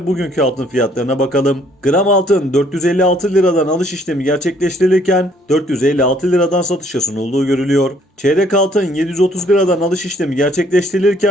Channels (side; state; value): both; normal; correlation 0.63